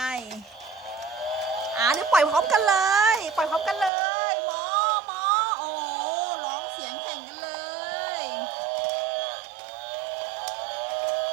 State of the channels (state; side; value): drops out; left; at 3.9 s